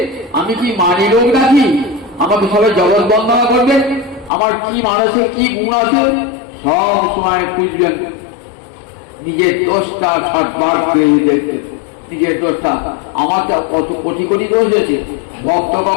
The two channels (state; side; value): drops out; right; at 4.3 s